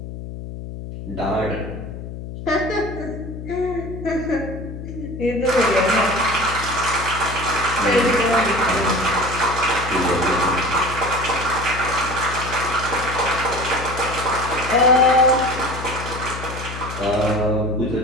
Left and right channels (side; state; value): left; noise; hum, 9 dB below the sound